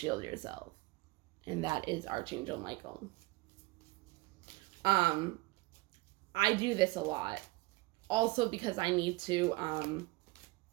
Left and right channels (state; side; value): quieter; left; 22.7 dB